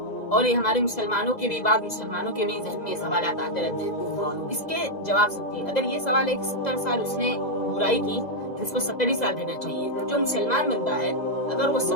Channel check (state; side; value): late; right; 2.0 ms